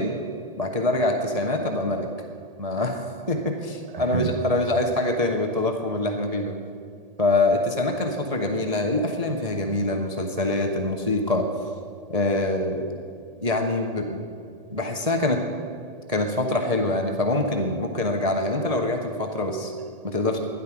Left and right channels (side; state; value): left; late; 1.8 ms